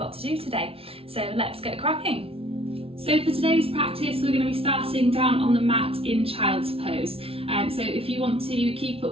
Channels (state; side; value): late; left; 0.27 ms